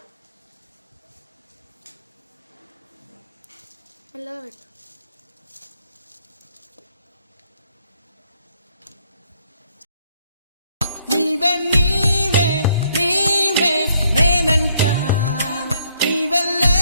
మెల్లగా పెట్టు. నీవే నీవే నీవే నేనంట, నీవే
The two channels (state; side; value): inverted; both; correlation -0.69